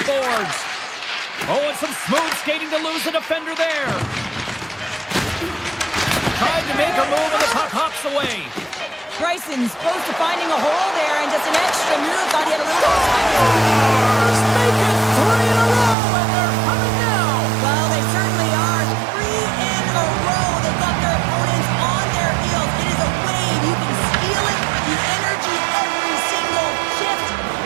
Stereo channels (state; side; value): drops out; left; at 16.0 s